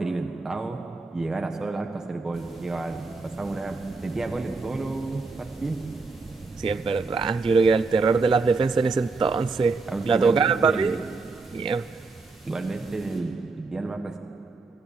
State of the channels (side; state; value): left; quieter; 4.0 dB